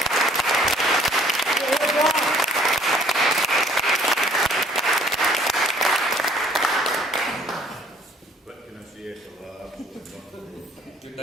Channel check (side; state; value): both; normal; correlation 0.58